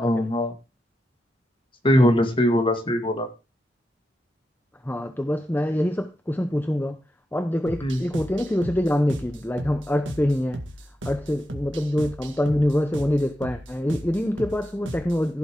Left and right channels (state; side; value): normal; both; correlation 0.87